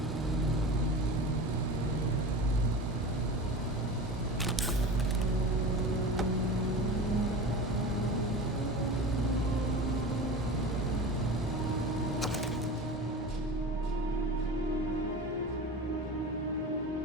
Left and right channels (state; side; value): normal; both; correlation 0.31